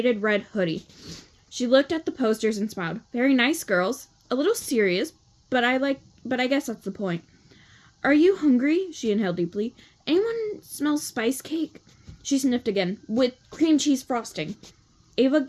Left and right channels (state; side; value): identical; both; correlation 1.00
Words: red hoodie. She looked at the posters and smiled. Very nice, girls. A little serious, but I guess that's the point. Are you hungry? She inhaled deeply. Anyone smell spice cake? She sniffed again. With cream cheese frosting. Ava